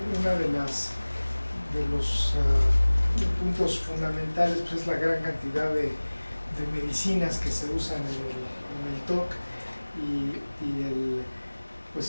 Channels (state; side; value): inverted; both; correlation -1.00